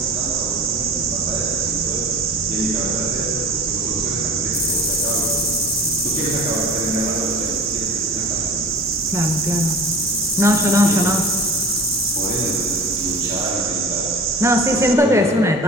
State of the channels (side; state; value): both; normal; correlation 0.39